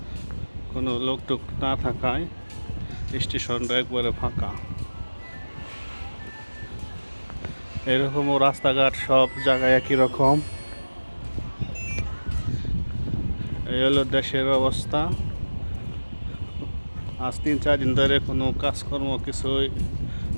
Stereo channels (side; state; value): both; inverted; correlation -1.00